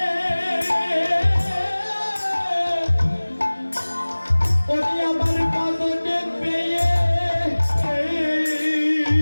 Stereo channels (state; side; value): inverted; both; correlation -1.00